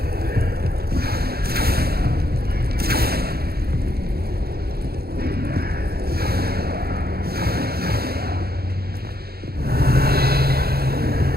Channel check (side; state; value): left; late; 0.45 ms